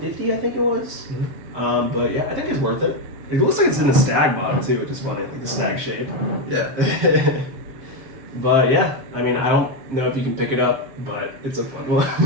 I think it was. Mm-hmm. But yeah, I think it's worth it. It looks like it's in a stag bottle too, which is funny, like the stag shape. Yeah. But yeah, I mean, I don't know if you can pick it up, but it's a fun one.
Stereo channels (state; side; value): late; left; 7.6 ms